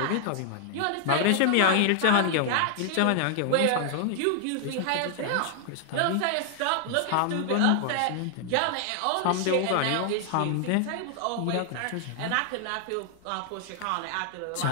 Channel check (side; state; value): both; different; correlation 0.00